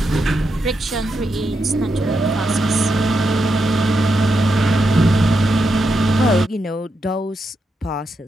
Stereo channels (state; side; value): normal; both; correlation 0.84